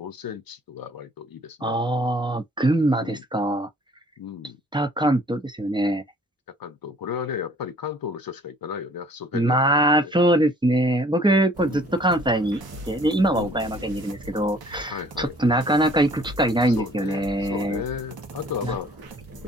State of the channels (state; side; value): normal; both; correlation 0.56